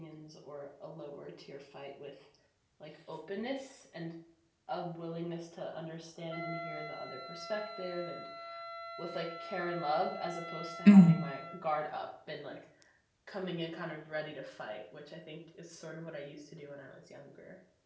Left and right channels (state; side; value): identical; both; correlation 1.00